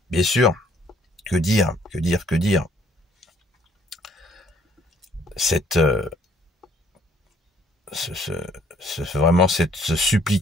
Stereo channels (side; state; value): both; normal; correlation 0.63